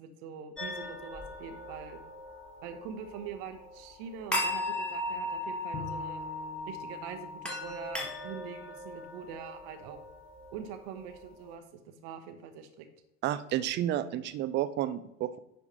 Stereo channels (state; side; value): quieter; left; 3.7 dB